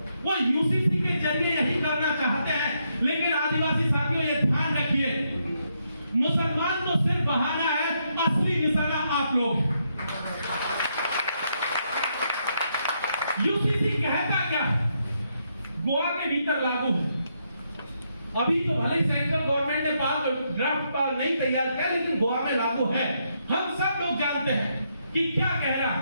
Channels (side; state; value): both; inverted; correlation -0.78